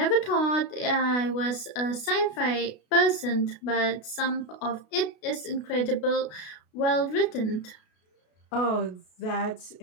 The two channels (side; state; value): right; late; 33 ms